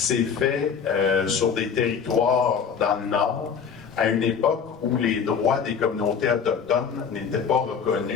fait sur des territoires dans le Nord, à une époque où les droits des communautés autochtones n'étaient pas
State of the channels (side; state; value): right; quieter; 6.7 dB